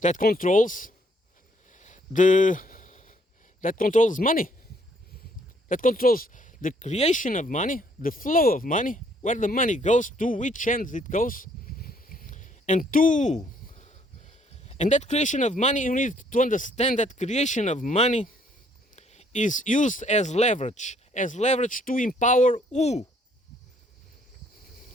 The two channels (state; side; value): normal; both; correlation 0.65